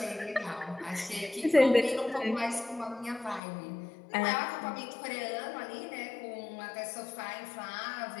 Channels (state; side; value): drops out; right; at 3.4 s